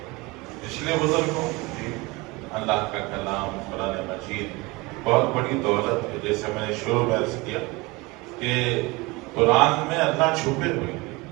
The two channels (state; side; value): quieter; left; 23.6 dB